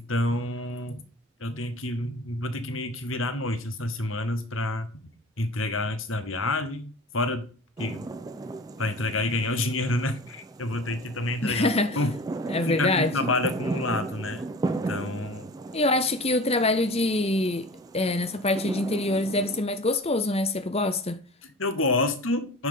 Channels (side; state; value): both; normal; correlation 0.39